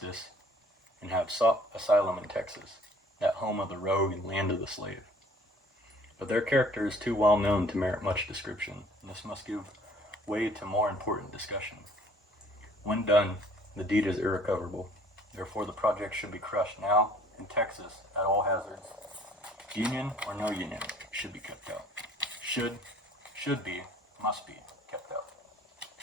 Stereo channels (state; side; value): normal; both; correlation 0.55